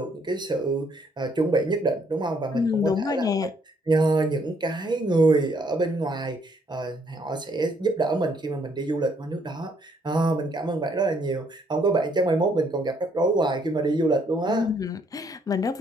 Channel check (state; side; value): normal; both; correlation 0.68